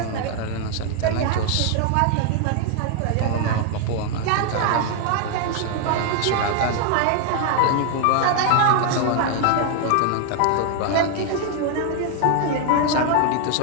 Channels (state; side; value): different; both; correlation 0.00